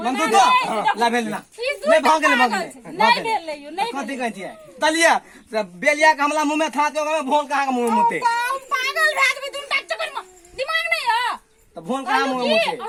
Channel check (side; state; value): both; identical; correlation 1.00